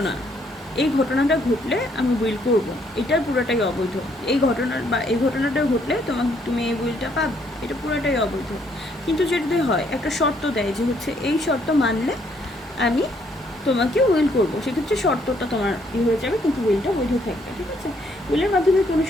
এই ঘটনাটা ঘটলে আমি উইল করব, এটার পুরোটাই অবৈধ। এই ঘটনাটা ঘটলে তুমি এই উইলটা পাবে, এটা পুরোটাই অবৈধ। কিন্তু যদি হয় একটা শর্ত দেয় যে হচ্ছে এই শর্ত মানলে আমি তোমাকে উইল করব, সেক্ষেত্রে শর্তটা তোমার হয়ে যাবে, কিন্তু উইলটা বৈধ থাকবে। ঠিক আছে, উইলের মাধ্যমে কোনো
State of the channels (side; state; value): both; normal; correlation 0.69